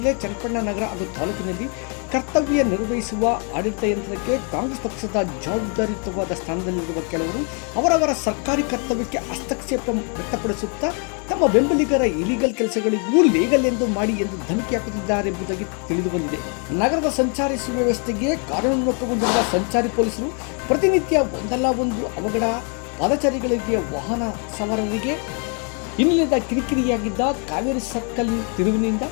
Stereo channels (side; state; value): right; quieter; 38.4 dB